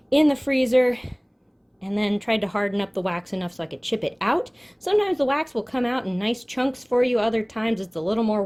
in the freezer, and then tried to harden up the wax enough so I could chip it out. Sometimes the wax will come out in nice chunks for you, other times it's a little more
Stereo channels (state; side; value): identical; both; correlation 1.00